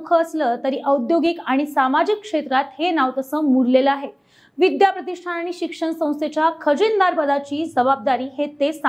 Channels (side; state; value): both; identical; correlation 1.00